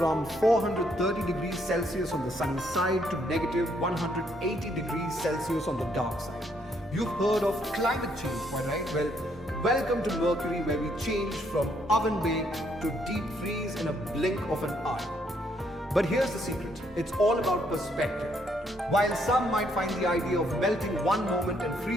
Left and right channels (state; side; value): normal; both; correlation 0.71